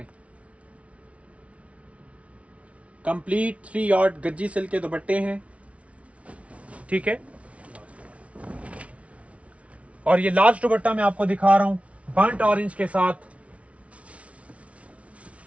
कंप्लीट 3 यार्ड गज्जी सिल्क के दुपट्टे हैं, ठीक है। और ये लास्ट दुपट्टा मैं आपको दिखा रहा हूं, बर्न्ट ऑरेंज के साथ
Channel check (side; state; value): left; late; 0.064 ms